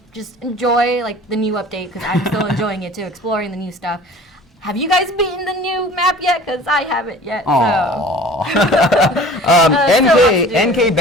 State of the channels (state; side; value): normal; both; correlation 0.44